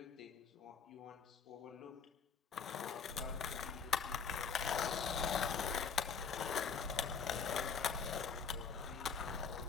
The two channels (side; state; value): right; quieter; 5.9 dB